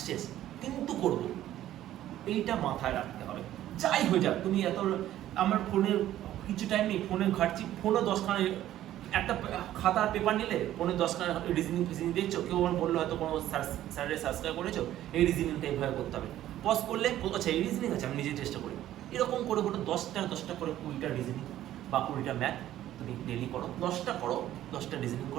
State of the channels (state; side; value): quieter; left; 13.0 dB